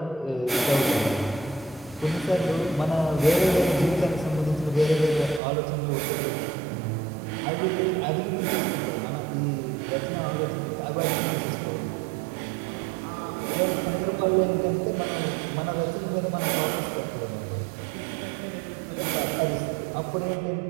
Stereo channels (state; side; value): drops out; left; at 5.4 s